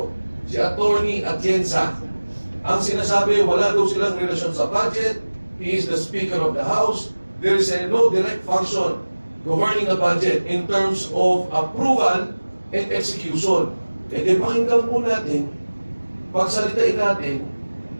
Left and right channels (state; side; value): inverted; both; correlation -1.00